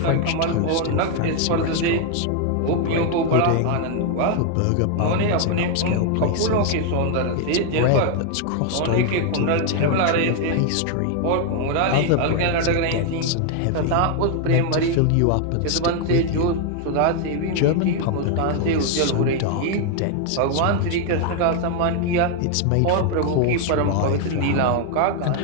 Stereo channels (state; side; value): different; both; correlation 0.00